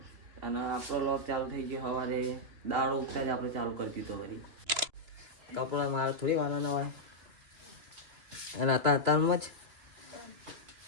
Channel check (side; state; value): left; late; 2.9 ms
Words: અને આપણો લોક ચાલુ થઈ ગયો સવારે દાળ ઉગતા જ આપણે ચાલુ કરી દીધો. વળી કપડા મારે થોડી વાના હોય, અને અત્યારમાં જ